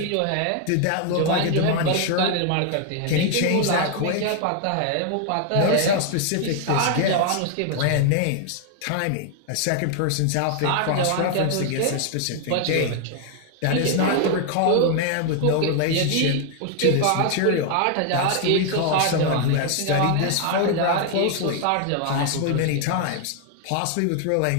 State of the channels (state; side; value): different; both; correlation 0.00